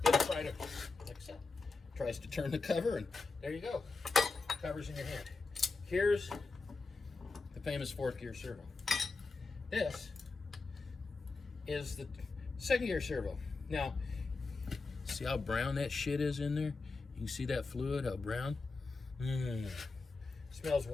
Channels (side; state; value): right; quieter; 4.0 dB